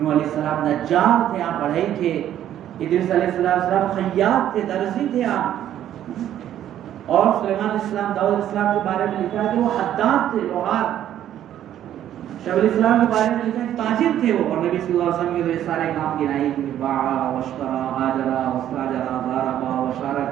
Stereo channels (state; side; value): quieter; left; 11.3 dB